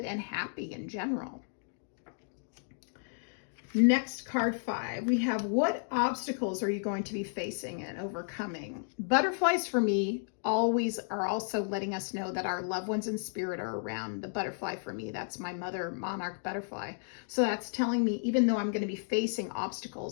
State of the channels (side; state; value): right; silent; digital silence